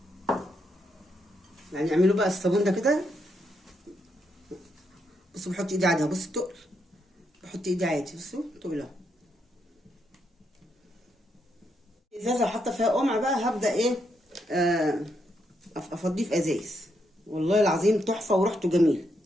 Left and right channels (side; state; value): both; normal; correlation 0.79